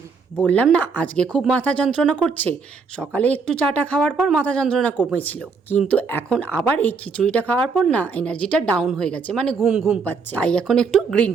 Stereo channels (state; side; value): quieter; left; 5.0 dB